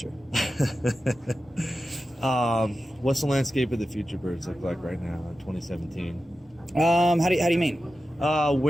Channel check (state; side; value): noise; left; rumble, 30 dB below the sound